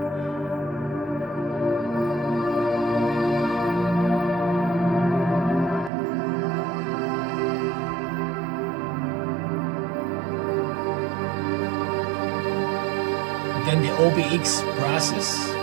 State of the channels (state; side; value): drops out; left; at 5.9 s